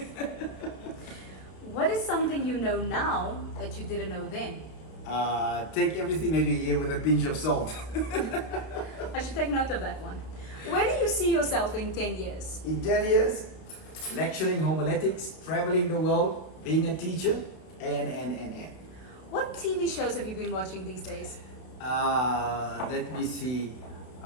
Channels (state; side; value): late; right; 31 ms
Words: What is something you know now that you didn't know then? Take everything that you hear with a pinch of salt. I should take note of that one. Where do you see yourself in 10 years? In 10 years, lecturing homiletics, traveling the world, being a teacher, and. What TV shows have you been watching these days? Let me see.